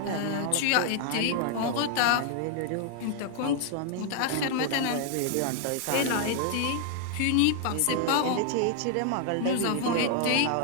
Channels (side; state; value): both; different; correlation 0.00